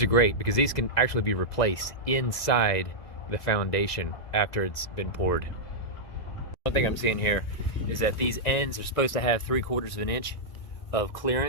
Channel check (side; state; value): right; late; 2.0 ms